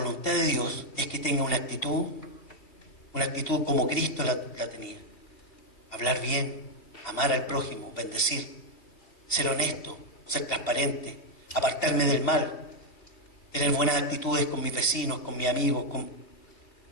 de Dios es que tenga una actitud como Cristo la tenía. Hablar bien, amar al prójimo, bendecir, ser honesto, ser transparente, apartarme del mal, tener buenas actitudes con mis vecinos, con mis amigos,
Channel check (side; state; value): right; late; 2.7 ms